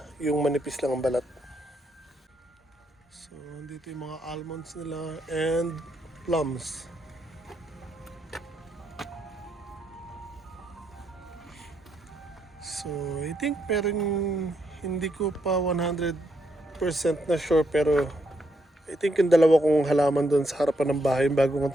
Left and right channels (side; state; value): both; normal; correlation 0.77